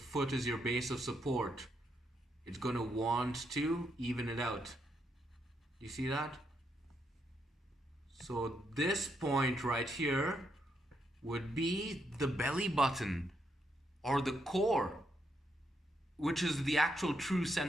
is your base of support. It's gonna want to even it out. Do you see that? So this point right here would be the belly button or the core, which is the actual true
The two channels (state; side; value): normal; both; correlation 0.79